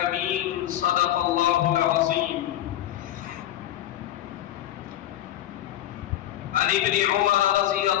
صدق الله العظيم عن ابن عمر رضي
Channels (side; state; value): right; quieter; 12.8 dB